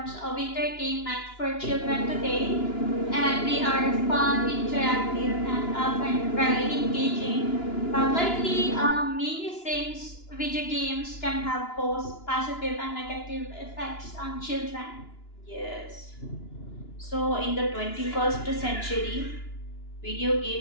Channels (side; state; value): right; late; 2.9 ms